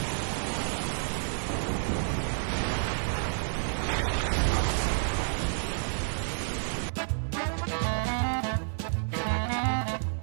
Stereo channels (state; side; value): silent; left; 58 dB below the other